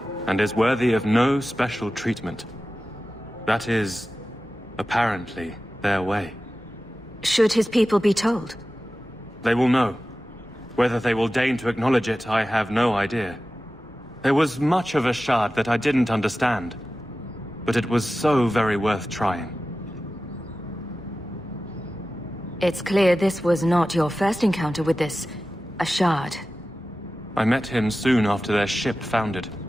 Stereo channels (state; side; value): normal; both; correlation 0.95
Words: and is worthy of no special treatment. That is, apparently, their way. Should his people be told? They will know. Whether they will deign to acknowledge it, I have no idea. There was much of Ashard that I didn't understand, but it was so very worth trying. It's clear this was not your first encounter with this Ashard. I met him soon after their ship foundered.